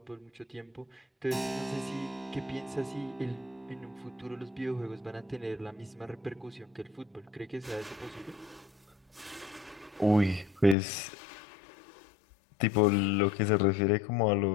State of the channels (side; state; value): right; drops out; at 10.8 s